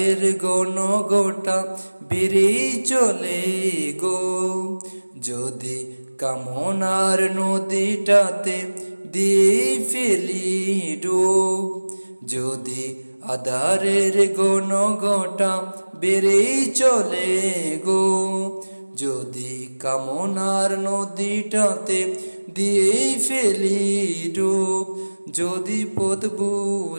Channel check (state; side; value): inverted; both; correlation -1.00